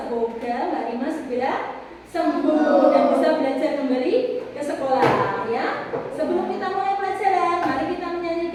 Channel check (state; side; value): identical; both; correlation 1.00